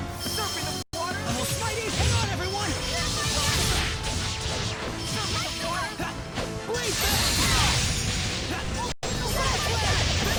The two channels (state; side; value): identical; both; correlation 1.00